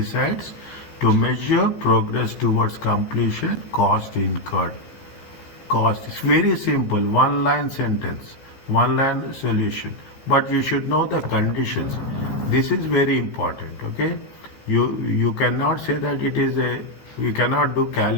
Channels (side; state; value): right; late; 15 ms